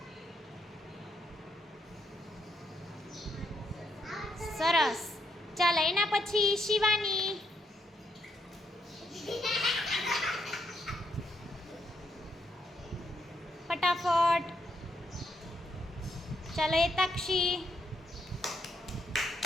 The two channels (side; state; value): both; normal; correlation 0.77